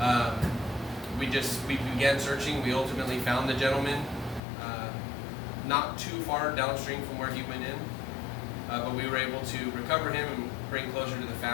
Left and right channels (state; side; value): drops out; right; at 4.4 s